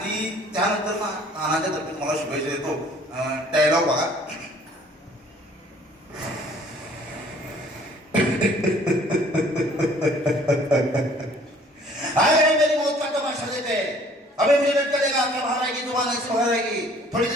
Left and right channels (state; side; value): normal; both; correlation 0.55